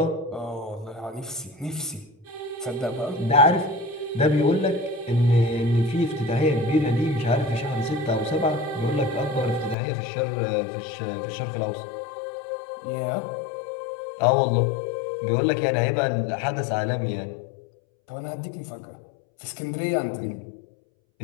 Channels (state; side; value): drops out; right; at 9.8 s